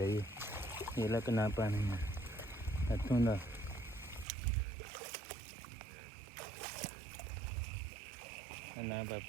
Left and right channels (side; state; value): left; drops out; at 4.2 s